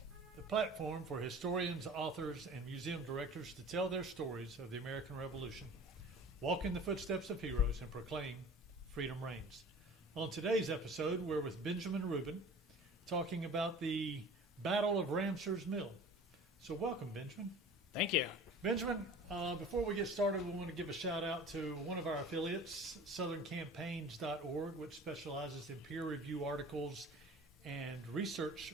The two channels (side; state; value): both; normal; correlation 0.42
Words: the platform for historians, authors, and museum directors to tell their stories of the American Revolution, walk in the footsteps of heroes, and proclaim freedom reigns. On today's episode, we're with Benjamin Rubin, talking about the Battle of Ramsours Mill. So welcome, Benjamin. Thank you. Benjamin, before we get started, we want to give a shout out to one of our affiliates, southerncampaigns.org, which specializes in peer review articles and research